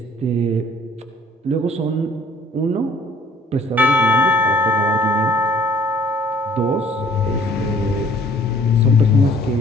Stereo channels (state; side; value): normal; both; correlation 0.57